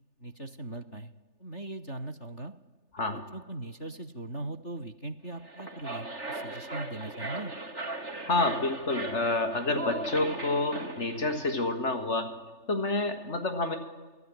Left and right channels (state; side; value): late; right; 3.4 ms